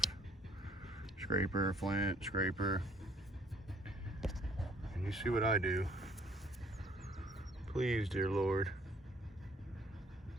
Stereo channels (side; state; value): both; normal; correlation 0.62